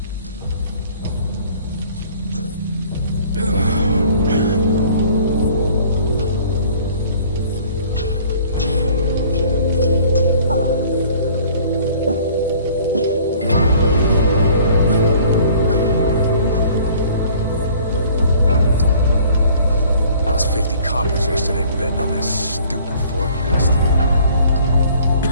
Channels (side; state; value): both; inverted; correlation -0.53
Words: Lost 50 coppers yesterday betting on this stupid forecast.